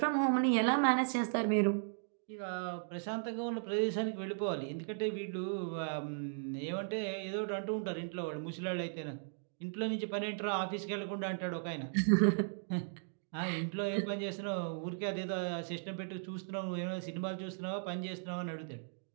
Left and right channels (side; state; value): left; silent; digital silence